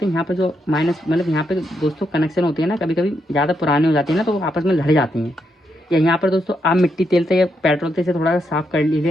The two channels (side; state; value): both; normal; correlation 0.80